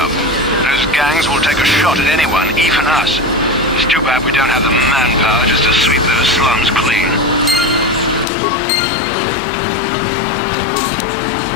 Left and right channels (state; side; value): drops out; right; at 8.2 s